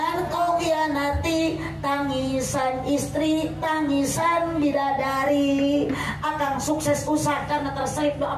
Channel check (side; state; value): both; identical; correlation 1.00